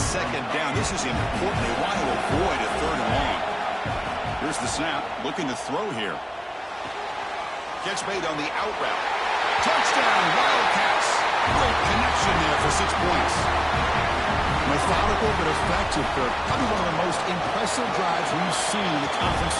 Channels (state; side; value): identical; both; correlation 1.00